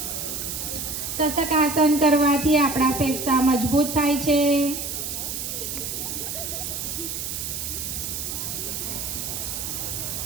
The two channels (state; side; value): noise; right; hiss, 4 dB below the sound